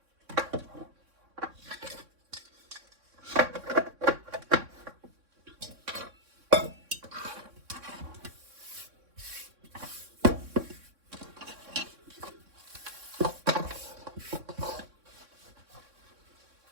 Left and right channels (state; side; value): late; left; 3.6 ms